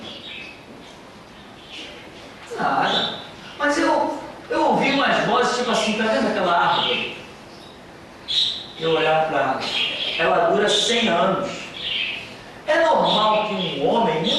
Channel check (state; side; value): identical; both; correlation 1.00